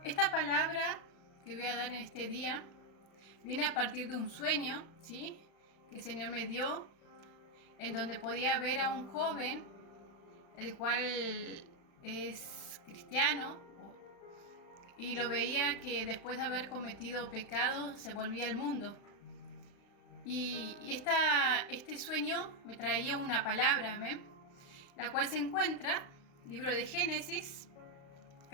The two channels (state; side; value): late; right; 35 ms